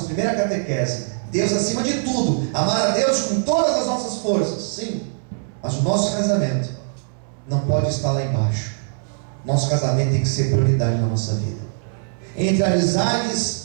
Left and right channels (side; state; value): left; silent; 64 dB below the other